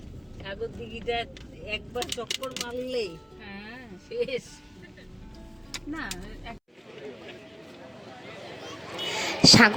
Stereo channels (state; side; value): identical; both; correlation 1.00